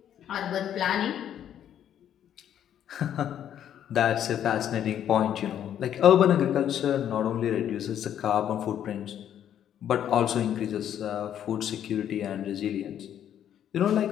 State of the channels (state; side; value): quieter; right; 10.1 dB